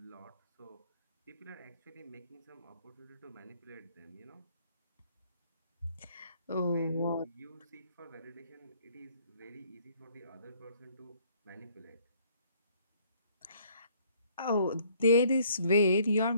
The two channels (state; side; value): inverted; both; correlation -0.62